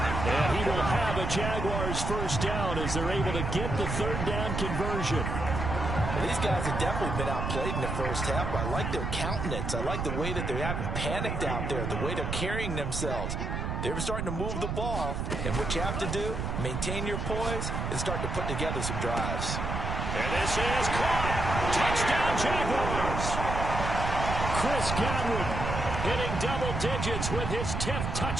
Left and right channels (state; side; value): noise; right; rumble, 2 dB below the sound